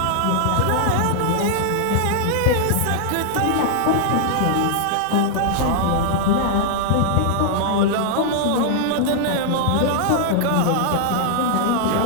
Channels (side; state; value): both; different; correlation -0.01